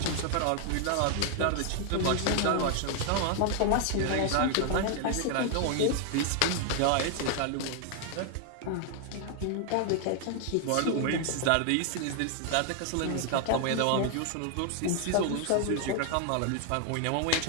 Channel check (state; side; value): different; both; correlation 0.00